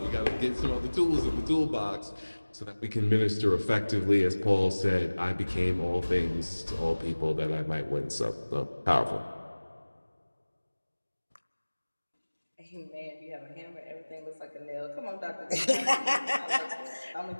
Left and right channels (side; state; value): both; inverted; correlation -1.00